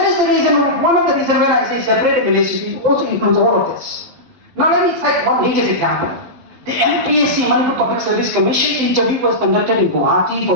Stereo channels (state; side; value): late; left; 12 ms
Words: is the reason, one of the reasons when I say separate administration, it also includes all of this. Now let me cite one latest example. The MPSC, Manipur Public Service Commission interview was conducted in Guwahati for